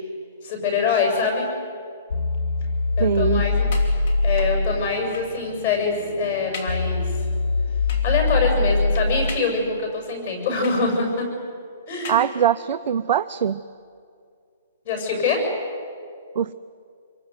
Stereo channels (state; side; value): inverted; both; correlation -0.48